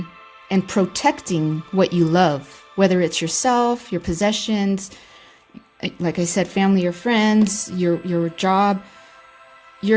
and protecting what you love, whether it's yourself, your possessions, like I said, family or friends, your job.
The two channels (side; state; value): both; identical; correlation 1.00